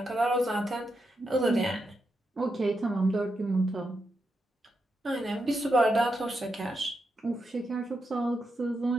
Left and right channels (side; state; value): both; normal; correlation 0.84